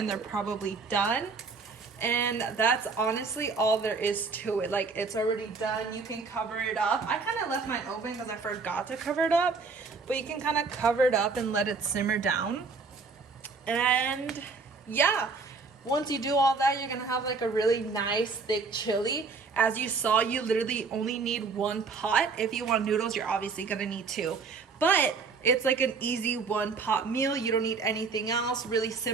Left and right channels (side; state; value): left; quieter; 4.6 dB